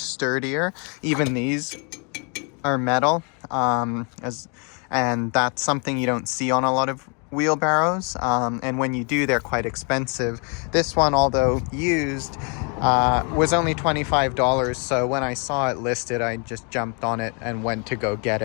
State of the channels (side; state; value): right; quieter; 36.0 dB